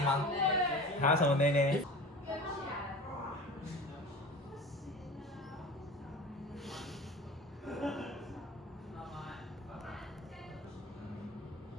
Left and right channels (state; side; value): normal; both; correlation 0.36